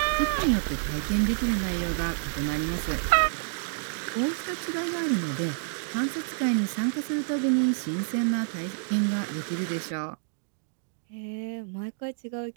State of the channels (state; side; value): silent; left; digital silence